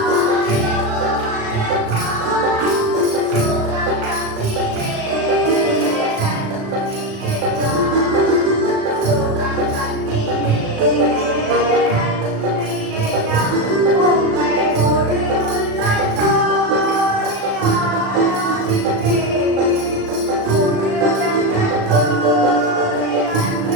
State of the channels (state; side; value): late; left; 36 ms